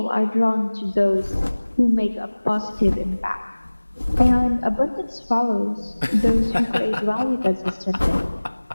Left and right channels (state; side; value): inverted; both; correlation -1.00